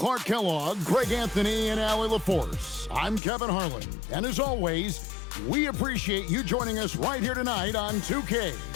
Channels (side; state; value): right; drops out; at 3.2 s